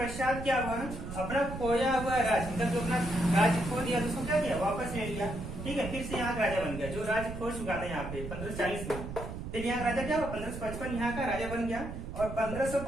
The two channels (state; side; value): noise; right; rumble, 8 dB below the sound